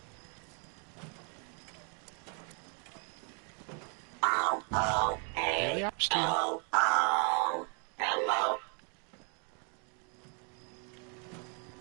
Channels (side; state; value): left; quieter; 39.8 dB